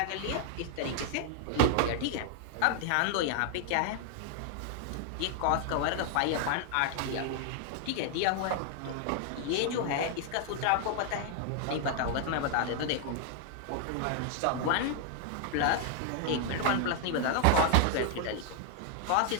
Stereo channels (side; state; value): both; different; correlation 0.00